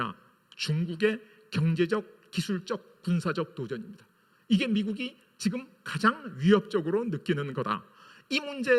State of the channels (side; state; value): both; identical; correlation 1.00